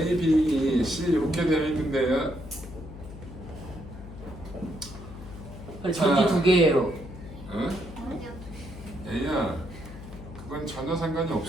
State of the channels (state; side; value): noise; left; hum, 14 dB below the sound